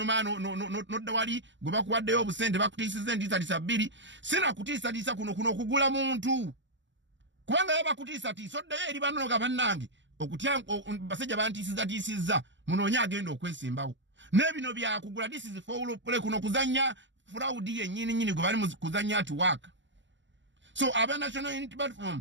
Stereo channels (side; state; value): left; late; 0.54 ms